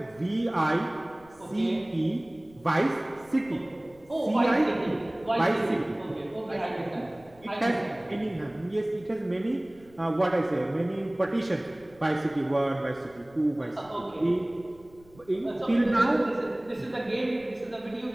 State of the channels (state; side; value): noise; left; rumble, 26 dB below the sound